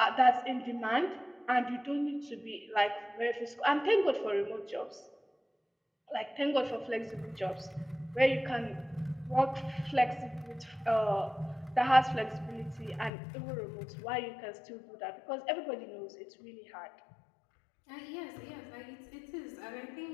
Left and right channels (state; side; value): drops out; right; at 13.1 s